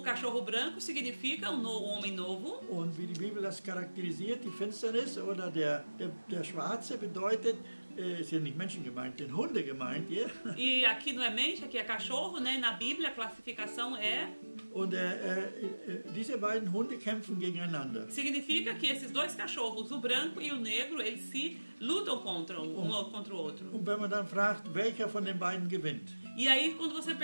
cachorro branco significa um homem novo. Und wie die Bibel das charakterisiert, die Finsternis oder der Schwarze bedeutet, sind nicht Menschen gemeint, sind Hunde gemeint hier. E aqui não é mente, aqui é cachorro, né? Na Bíblia a classificação Und diese beiden Hunde kämpfen gegeneinander. significa que esses dois cachorros, o branco e o negro, eles se lutam contra um contra o outro. Und wenn man dann fragt, welcher von den beiden gewinnt, E aí quando você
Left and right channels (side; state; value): both; inverted; correlation -1.00